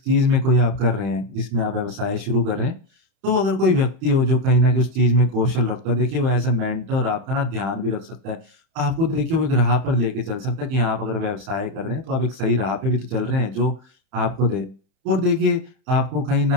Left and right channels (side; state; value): left; late; 30 ms